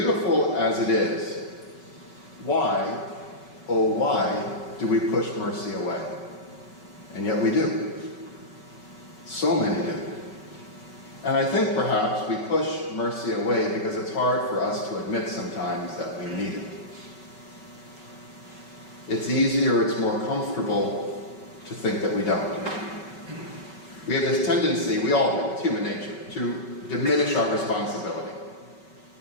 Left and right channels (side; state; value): right; late; 5.3 ms